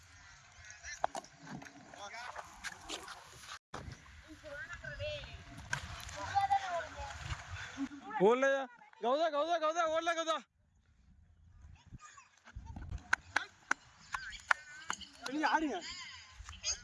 ஓடலையா கௌதா ஓடல கௌதா. ஆடுங்க.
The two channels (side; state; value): both; identical; correlation 1.00